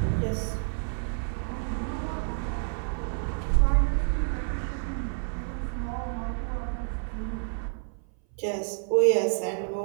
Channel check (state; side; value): silent; left; 59 dB below the other